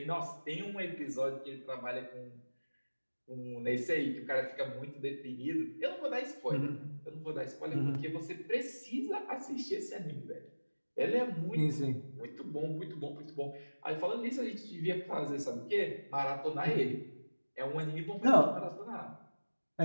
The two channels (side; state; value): both; inverted; correlation -1.00